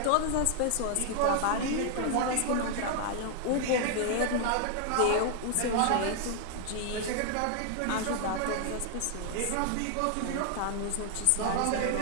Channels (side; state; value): both; different; correlation 0.00